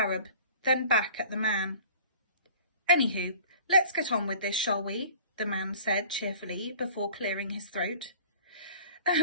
then back at the man. "Anywho, let's get on with this, shall we?" the man said cheerfully before clearing his throat.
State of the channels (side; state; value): both; inverted; correlation -0.47